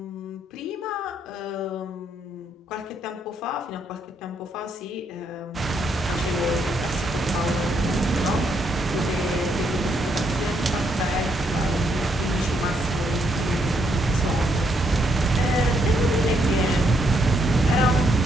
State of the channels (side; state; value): both; normal; correlation 0.75